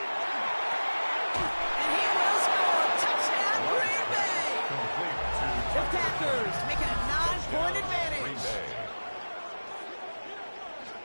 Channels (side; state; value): both; inverted; correlation -1.00